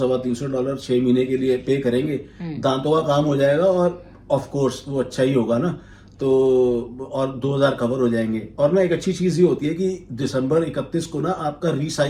6 महीने के लिए पे करेंगे, दांतों का काम हो जाएगा, और ऑफ कोर्स वो अच्छा ही होगा ना, तो और 2000 कवर हो जाएंगे। और ना एक अच्छी चीज ये होती है कि दिसंबर 31 को ना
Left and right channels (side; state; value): both; identical; correlation 1.00